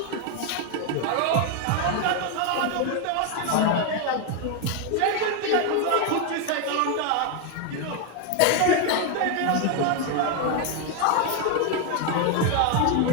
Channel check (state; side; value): different; both; correlation 0.01